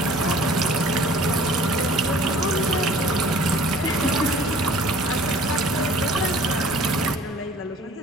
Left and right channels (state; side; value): normal; both; correlation 0.50